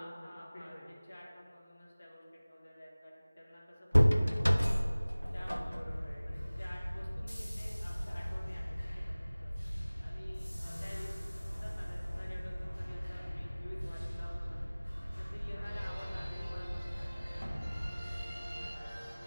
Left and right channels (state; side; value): inverted; both; correlation -0.99